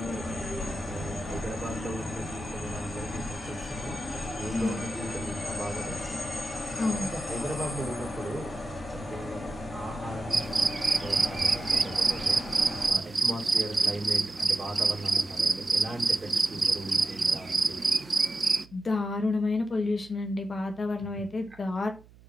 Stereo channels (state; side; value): noise; right; hum, 24 dB below the sound